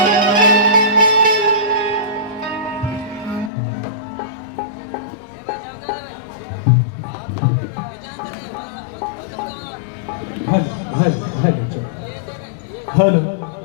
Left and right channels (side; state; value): right; drops out; at 3.5 s